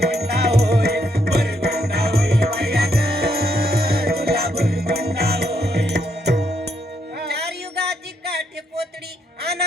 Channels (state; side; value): normal; both; correlation 0.75